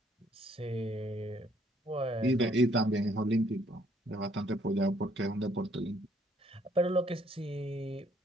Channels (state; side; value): normal; both; correlation 0.65